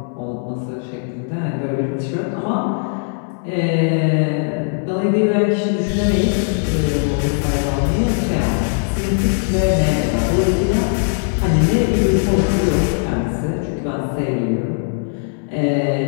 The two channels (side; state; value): right; silent; 63 dB below the other